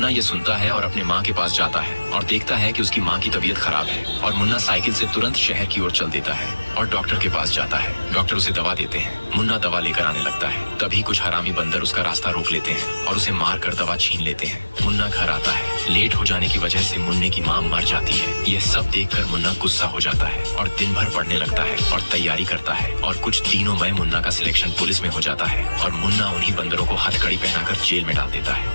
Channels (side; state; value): both; inverted; correlation -1.00